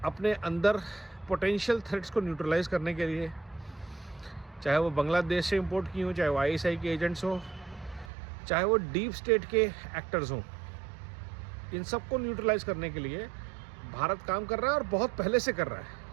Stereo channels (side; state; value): left; drops out; at 8.1 s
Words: अपने अंदर पोटेंशियल थ्रेट्स को न्यूट्रलाइज करने के लिए, चाहे वो बांग्लादेश से इंपोर्ट की हो, चाहे वो आईएसआई के एजेंट्स हो, चाहे वो डीप स्टेट के एक्टर्स हों, इन सबको न्यूट्रलाइज करने के लिए भारत काम कर रहा है, और बहुत पहले से कर रहा है।